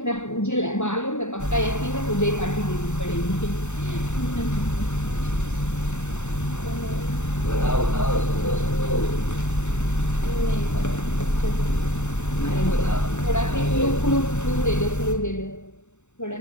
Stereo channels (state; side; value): late; right; 0.83 ms